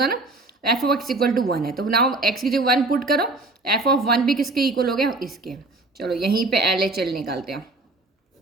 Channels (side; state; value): left; quieter; 3.2 dB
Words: ना, तो f of x equal to 1 है, तो नाउ x की जगह 1 पुट करो, f ऑफ 1 भी किसके इक्वल हो गया, इसके। चलो यहीं पे LHL निकालते हैं।